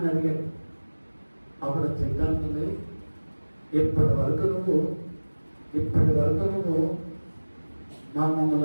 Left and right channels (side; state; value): both; inverted; correlation -1.00